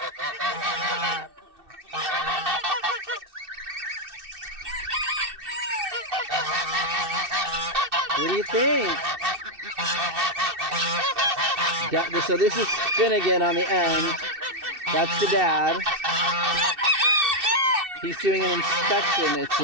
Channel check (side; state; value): left; late; 2.6 ms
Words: do you think? So this is Finnegan on the end. That's the dad. He's doing an inspection, it